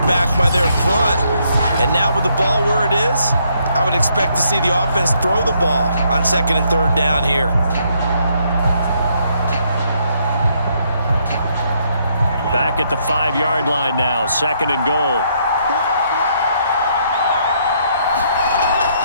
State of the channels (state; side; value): inverted; both; correlation -0.72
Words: by their front. And now with the ball where it is, I would expect to see the offense throw the ball on second and third down here. Back at the 5-yard line now, second and goal.